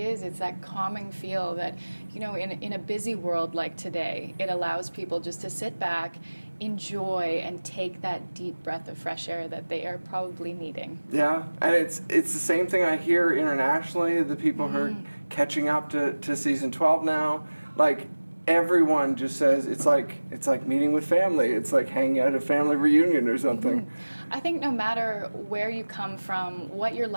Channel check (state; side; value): inverted; both; correlation -1.00